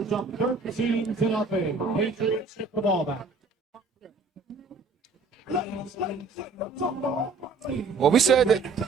up 13-0. Patriots get the ball back. Well, we said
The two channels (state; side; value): quieter; left; 4.1 dB